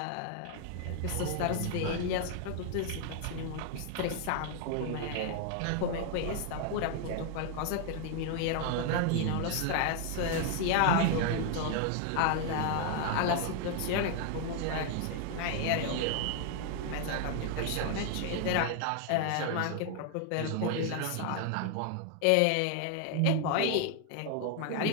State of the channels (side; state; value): both; different; correlation 0.00